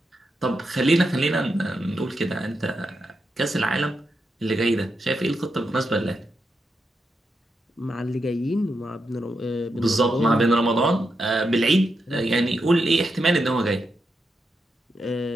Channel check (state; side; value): normal; both; correlation 0.85